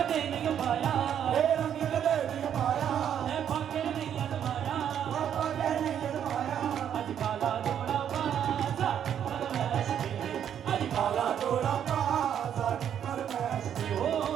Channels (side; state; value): left; quieter; 9.2 dB